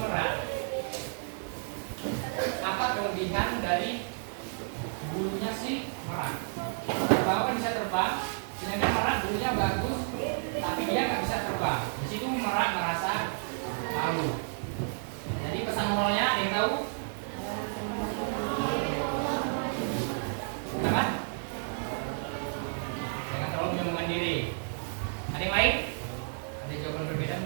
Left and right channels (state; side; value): silent; left; 57 dB below the other